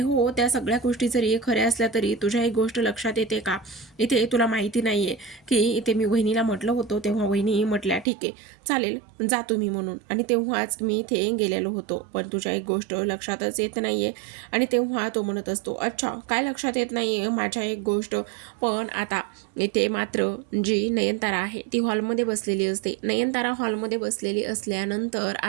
हो, त्या सगळ्या गोष्टी जरी खऱ्या असल्या तरी तुझ्या एक गोष्ट लक्षात येते का? इथे तुला माहिती नाही आहे की इथे मी वहिनीला म्हटलं होतं, तेव्हा वहिनी म्हटल्या ठीक आहे चालेल जा तुम्ही म्हणून, आणि तेव्हाच मी इथे गेलेलो होतो. पण तुझ्या एक गोष्ट लक्षातच येत नाही आहे. आणि तेव्हा तो म्हणत असतो, अच्छा काय लक्षात येत नाही आहे माझ्या एक गोष्ट? पण आता इथे मात्र जी नयनतारा आहे ती हॉलमध्ये बसलेली असते. नयनतारा हॉलमध्ये बसलेली असल्यानंतर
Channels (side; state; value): left; drops out; at 8.1 s